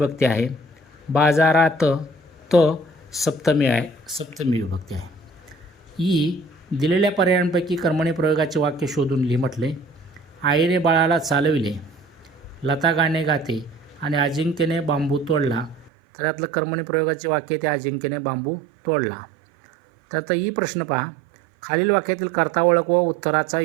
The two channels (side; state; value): left; drops out; at 15.9 s